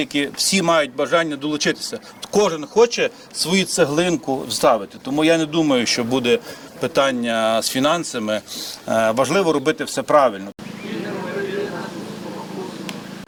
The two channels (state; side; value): identical; both; correlation 1.00